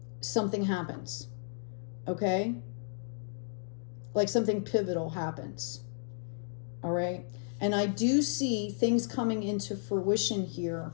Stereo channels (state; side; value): silent; right; digital silence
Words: something happens. Okay? Like something pivotal happens. All right? And I do see things coming into fruition here